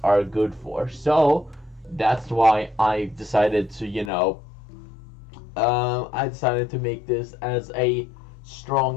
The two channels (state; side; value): drops out; right; at 4.1 s